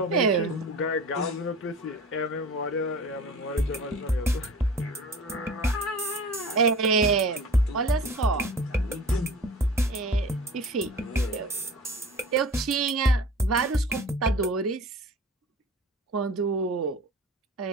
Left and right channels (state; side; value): normal; both; correlation 0.39